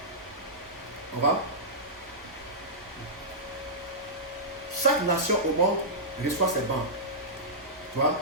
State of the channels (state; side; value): normal; both; correlation -0.15